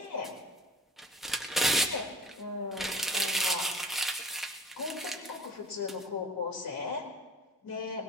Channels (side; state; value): both; normal; correlation 0.43